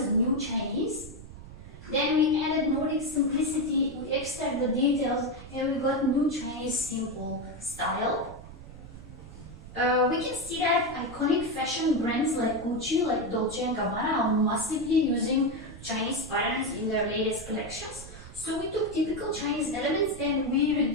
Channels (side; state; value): right; noise; rumble, 15 dB below the sound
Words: New Chinese. Then we added Nordic simplicity, we extract the details, and we got New Chinese simple style. We can see that iconic fashion brands like Gucci, like Dolce & Gabbana are massively using Chinese patterns in their latest collections. So we took typical Chinese elements and we